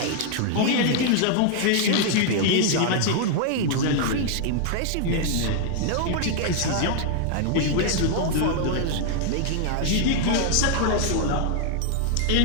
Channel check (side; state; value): both; different; correlation 0.00